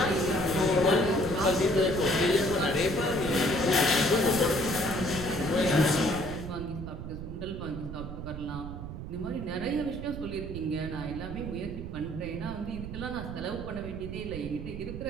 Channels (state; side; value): noise; right; rumble, 8 dB below the sound